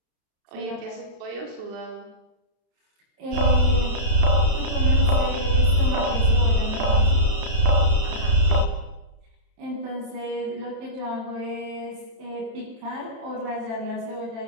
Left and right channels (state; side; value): late; left; 33 ms